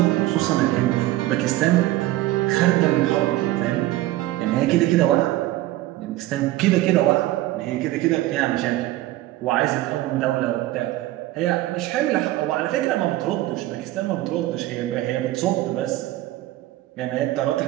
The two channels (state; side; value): quieter; left; 16.2 dB